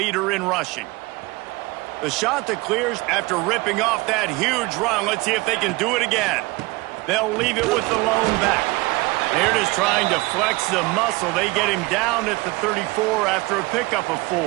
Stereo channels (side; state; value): left; quieter; 23.3 dB